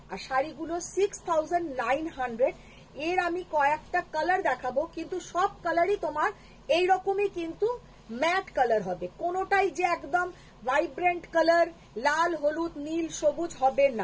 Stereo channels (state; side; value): identical; both; correlation 1.00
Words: আর শাড়িগুলো 6900। এর আমি কয়েকটা কালার দেখাবো, কিন্তু সব কালারই তোমার এইরকমই কিন্তু ম্যাট কালার হবে। কোনোটাই যে একদম ভাইব্রেন্ট কালার লাল হলুদ নীল সবুজ হবে